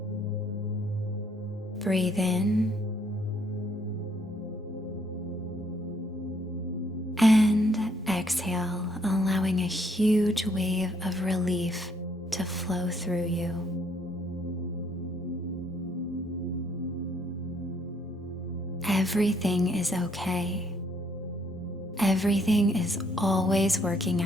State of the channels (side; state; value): both; normal; correlation 0.68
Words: Breathe in and exhale, allowing a huge wave of relief to flow through you. Everything is okay. Everything is always working